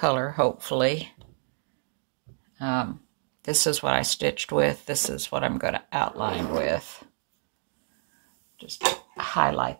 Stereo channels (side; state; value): left; silent; digital silence